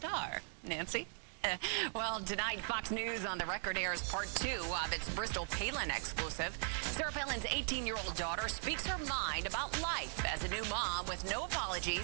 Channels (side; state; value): left; silent; 52 dB below the other